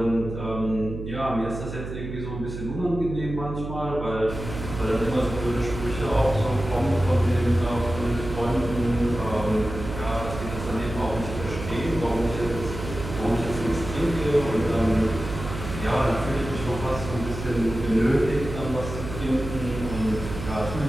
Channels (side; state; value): right; noise; hum, 8 dB below the sound